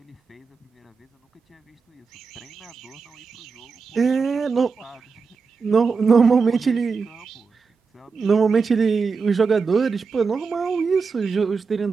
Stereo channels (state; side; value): quieter; left; 5.0 dB